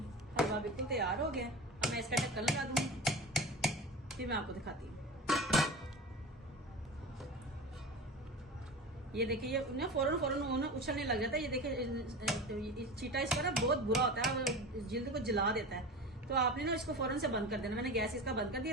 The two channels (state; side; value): normal; both; correlation 0.31